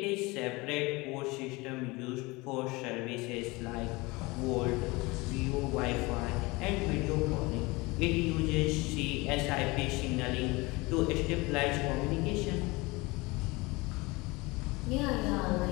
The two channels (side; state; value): right; quieter; 23.7 dB